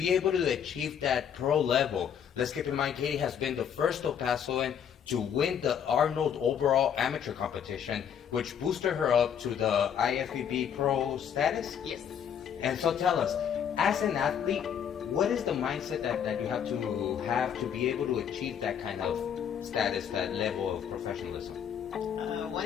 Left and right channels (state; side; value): quieter; right; 8.4 dB